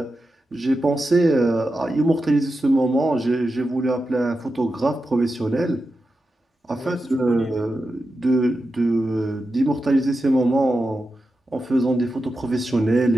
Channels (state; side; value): normal; both; correlation 0.90